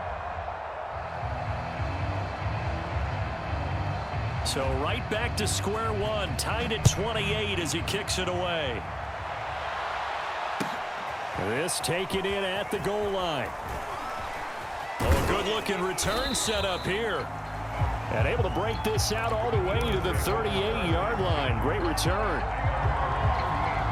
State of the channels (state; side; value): identical; both; correlation 1.00